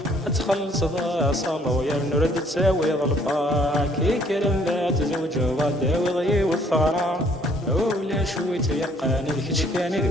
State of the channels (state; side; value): normal; both; correlation 0.62